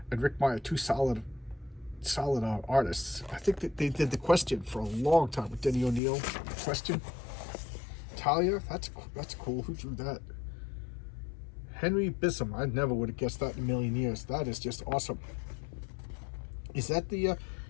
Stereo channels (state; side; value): drops out; right; at 6.0 s